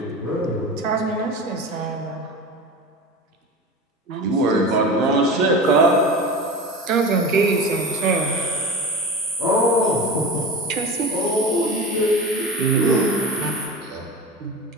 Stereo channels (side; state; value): both; normal; correlation 0.30